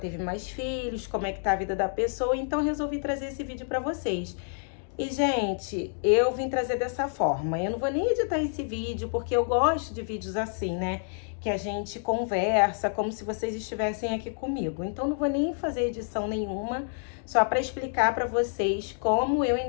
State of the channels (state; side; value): silent; right; digital silence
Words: mais filhos, como é que tá a vida da pessoa, então resolvi trazer esse vídeo pra vocês. E, gente, eu vim trazer dessa forma. Eu não vou nem editar esse vídeo, porque eu gosto de vídeos assim, né? Que a gente conversa, como se vocês estivessem aqui comigo. Então, não vou nem fazer edição nenhuma, só para explicar para vocês como eu